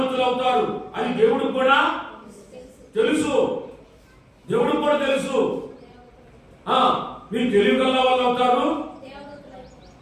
అవుతారు. అది దేవుడికి కూడా తెలుసు. మీరు తెలివిగల వాళ్ళు అవుతారు.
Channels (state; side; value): identical; both; correlation 1.00